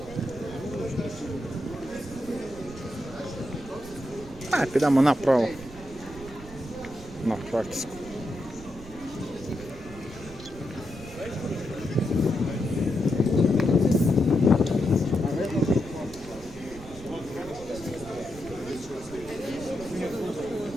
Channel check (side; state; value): right; noise; rumble, 16 dB below the sound